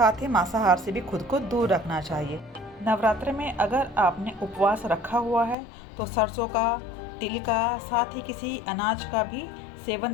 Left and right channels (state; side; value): drops out; right; at 5.6 s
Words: ही मांसाहार से भी खुद को दूर रखना चाहिए। नवरात्रि में अगर आपने उपवास रखा हुआ है तो सरसों का, तिल का, साथ ही किसी अनाज का भी सेवन